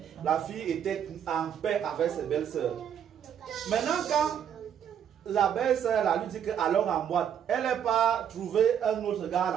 la fille était en paix avec ses belles-sœurs. Maintenant, quand la belle-sœur lui dit que allons en boîte, elle n'a pas trouvé un autre gars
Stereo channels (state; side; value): quieter; left; 8.9 dB